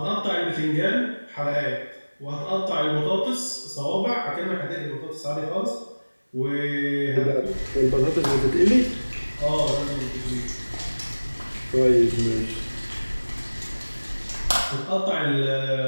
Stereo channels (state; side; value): inverted; both; correlation -1.00